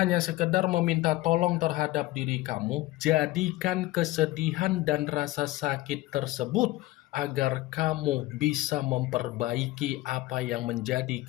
sekedar meminta tolong terhadap diri kamu, jadikan kesedihan dan rasa sakit tersebut agar kamu bisa memperbaiki apa yang menjadi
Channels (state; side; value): quieter; right; 18.0 dB